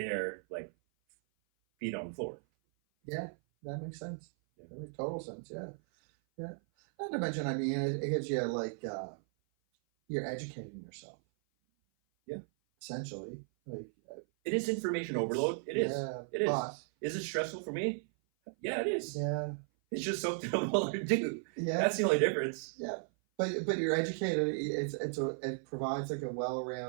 like feet on the floor. Yeah, that makes sense. Yeah. That makes total sense. Yeah, yeah. Not to mention, I mean, it gives you like you're educating yourself. Yeah. Essentially, like it is information overload. It is. Yeah, it is. But, is it stressful for me? Yeah, it is. Yeah. It's just something I'm willing to do. Yeah. That's the only difference. Yeah. But you're educated. It provides like a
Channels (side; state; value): left; silent; 54 dB below the other